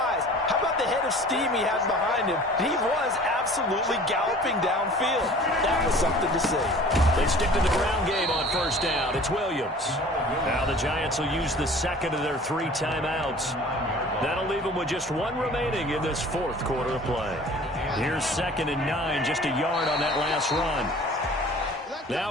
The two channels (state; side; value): normal; both; correlation 0.46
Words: How about the head of steam he had behind him? He was absolutely galloping downfield. That was something to see. They stick to the ground game on first down. It's Williams. Now the Giants will use the second of their 3 timeouts. That'll leave them with just 1 remaining in this 4th quarter of play. Here's 2nd and 9, just a yard on that last run.